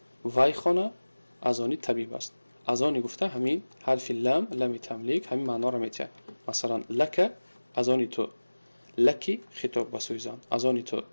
وای خانه از آن طبیب است. از آن گفته همین حرف لام، لام تملیک، همین معنا را میده. مثلا لک از آن تو، لکی خطاب به سوی زن، از آن تو،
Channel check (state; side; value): inverted; both; correlation -1.00